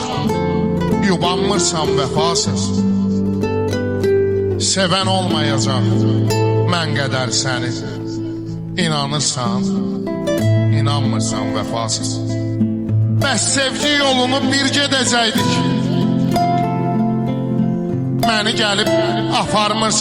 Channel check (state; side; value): identical; both; correlation 1.00